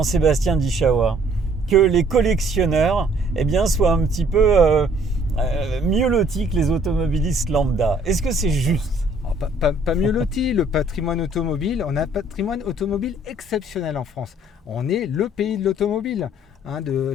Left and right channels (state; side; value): normal; both; correlation 0.60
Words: Dichawa, que les collectionneurs soient un petit peu mieux lotis que les automobilistes lambda? Est-ce que c'est juste? Pas mieux loti, le patrimoine automobile, on a un patrimoine automobile exceptionnel en France. On est le pays de l'automobile, de